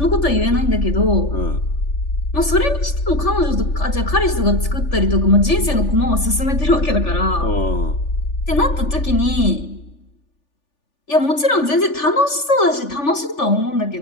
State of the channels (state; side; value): late; right; 3.4 ms